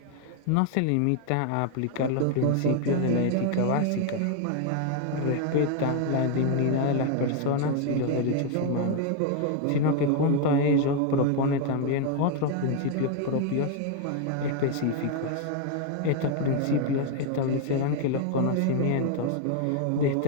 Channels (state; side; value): different; both; correlation 0.01